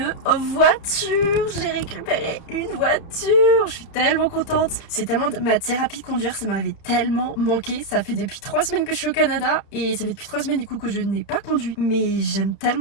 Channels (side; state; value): right; late; 30 ms